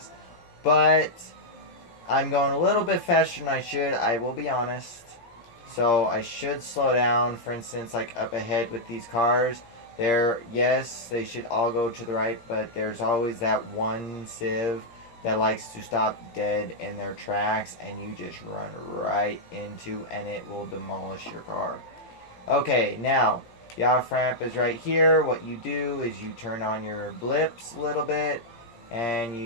But I'm going a little bit faster than I should. I will be honest. So I should slow down. For instance, like up ahead with these cars. Yes, they should all go to the right. But there's always that one civ that likes to stop dead in their tracks. And you just run right into, and it will demolish your car. Okay, now, the off-ramp is right here. What you do is you turn on your blips a little bit, and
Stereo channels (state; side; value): late; right; 17 ms